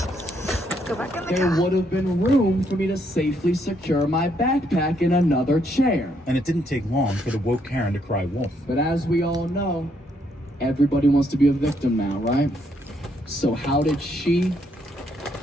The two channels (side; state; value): both; normal; correlation 0.73